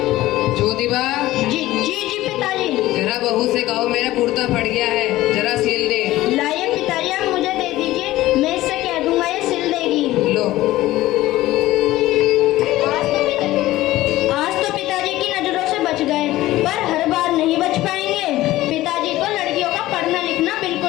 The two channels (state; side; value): quieter; right; 16.4 dB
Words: ज्योतिबा, जी जी जी पिताजी। जरा बहू से कहो मेरा कुर्ता फट गया है, जरा सिल दे। लाइए पिताजी, आप मुझे दे दीजिए, मैं इससे कह दूंगा ये सिल देगी। लो। आज तो पिताजी की नजरों से बच गए, पर हर बार नहीं बच पाएंगे। पिताजी को लड़कियों का पढ़ना लिखना